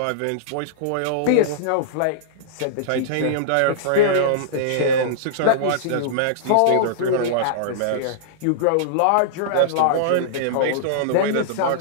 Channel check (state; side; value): different; both; correlation -0.02